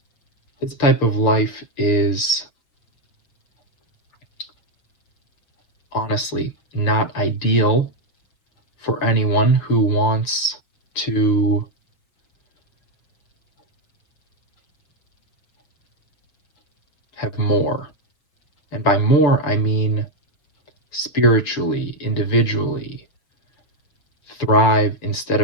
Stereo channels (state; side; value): late; right; 6.7 ms